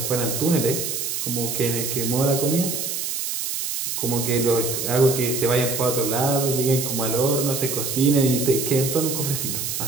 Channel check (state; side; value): noise; right; hiss, 3 dB below the sound